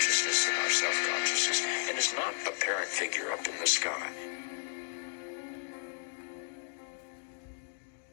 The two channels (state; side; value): silent; right; digital silence